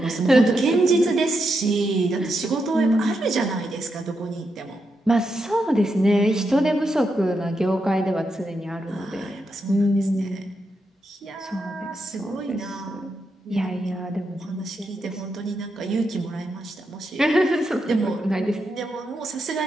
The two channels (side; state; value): both; normal; correlation 0.84